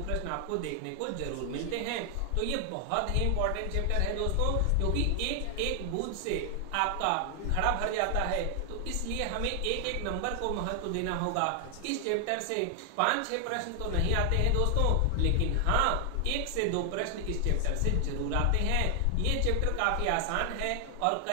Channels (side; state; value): both; different; correlation 0.00